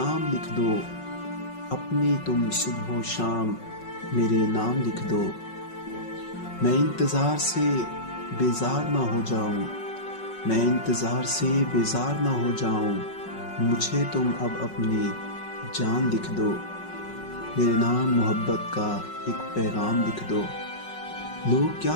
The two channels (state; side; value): late; right; 5.4 ms